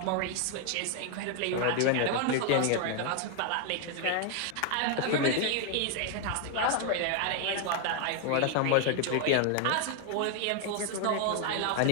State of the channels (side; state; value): both; different; correlation 0.01